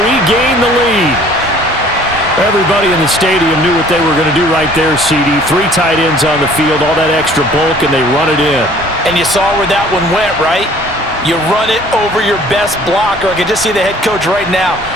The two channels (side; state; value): both; normal; correlation 0.53